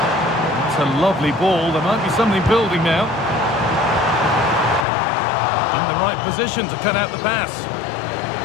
a lovely ball. There might be something building now. In the right position to cut out the pass.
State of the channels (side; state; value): right; drops out; at 4.9 s